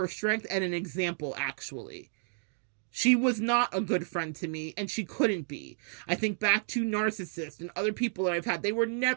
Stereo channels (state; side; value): silent; left; digital silence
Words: strength and an example, actually. She was not a good friend to me, and she couldn't be. I think back to narcissists and other people that I've had. They were